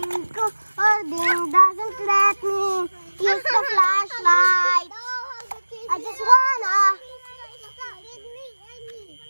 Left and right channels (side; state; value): both; inverted; correlation -1.00